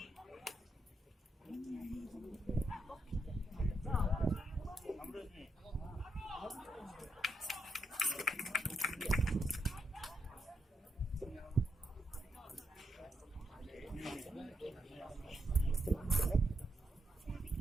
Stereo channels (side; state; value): both; normal; correlation 0.81